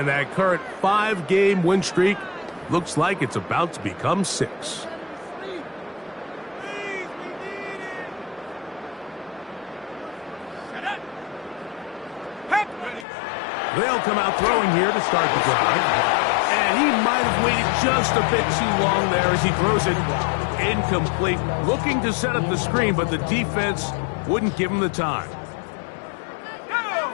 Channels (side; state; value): right; drops out; at 13.1 s